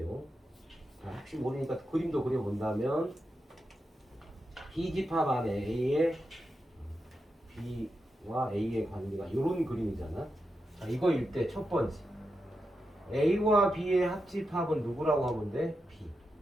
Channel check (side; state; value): both; normal; correlation 0.87